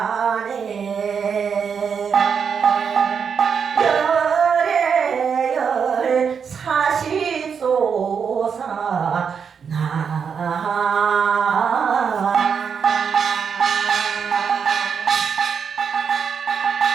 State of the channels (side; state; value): left; quieter; 6.6 dB